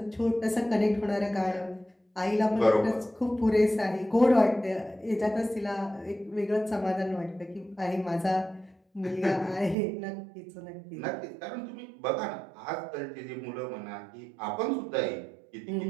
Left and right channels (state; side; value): drops out; left; at 9.8 s